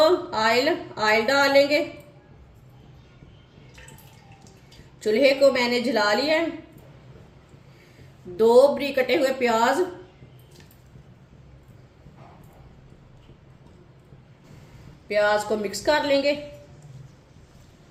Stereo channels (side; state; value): both; identical; correlation 1.00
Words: ऑयल डालेंगे। चूल्हे को मैंने जला लिया है। 2 बारीक कटे हुए प्याज को मिक्स कर लेंगे।